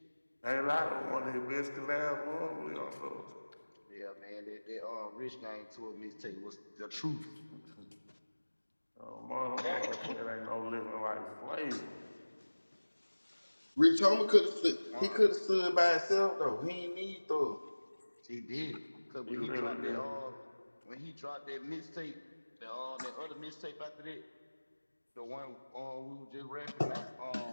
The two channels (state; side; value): inverted; both; correlation -1.00